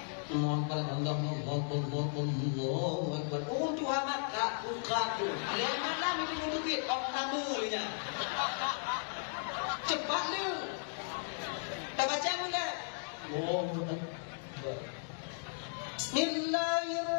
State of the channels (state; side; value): silent; right; digital silence